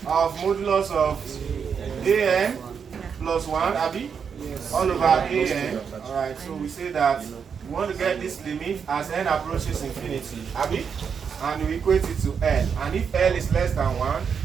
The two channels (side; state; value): left; quieter; 6.7 dB